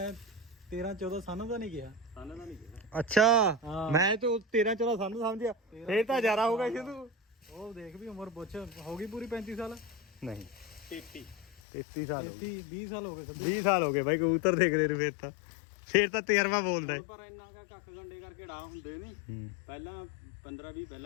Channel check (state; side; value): drops out; right; at 11.6 s